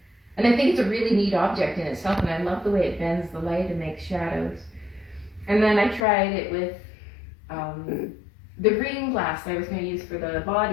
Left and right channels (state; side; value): drops out; right; at 6.0 s